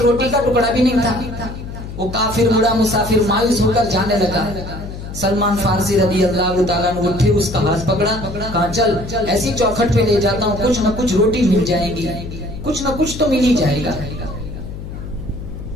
रोटी का टुकड़ा भी नहीं था। वो काफिर बूढ़ा मुसाफिर मायूस होकर जाने लगा। सलमान फारसी रदी अल्लाह ताला ने उठे, उसका हाथ पकड़ा, कहा चल ऐसी चौखट पे ले जाता हूँ, कुछ न कुछ रोटी मिल जाएगी, कुछ न कुछ तो मिल ही जाएगा।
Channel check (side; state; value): left; noise; hum, 10 dB below the sound